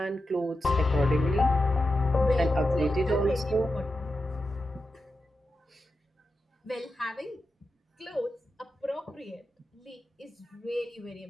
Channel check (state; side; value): normal; both; correlation 0.90